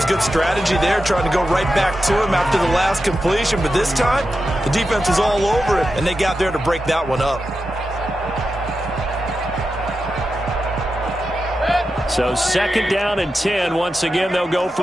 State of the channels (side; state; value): both; normal; correlation 0.90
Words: good strategy there, trying to go right back to him after the last completion. But this time, the defense was all over it, and they got there to break that one up. So 2nd down and 10. Once again, they'll go